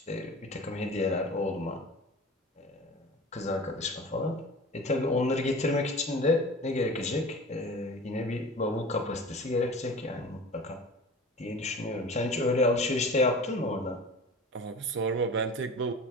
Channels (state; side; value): normal; both; correlation 0.37